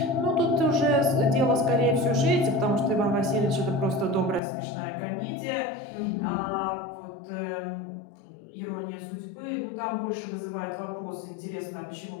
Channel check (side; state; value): right; drops out; at 4.4 s